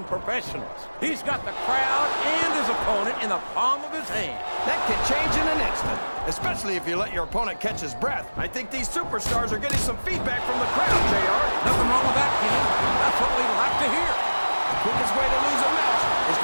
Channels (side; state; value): both; inverted; correlation -1.00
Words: professionals. He's got the crowd and his opponent in the palm of his hand. That can change in an instant, especially if you let your opponent catch his breath. I think these superstars are getting some feedback from the crowd, JR. Nothing wrong with that, King. That's what we like to hear. The quickest way to lose a match is